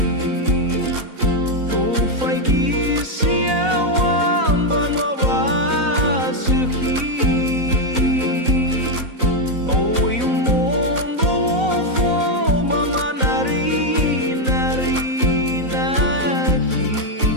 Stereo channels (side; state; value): left; late; 4.0 ms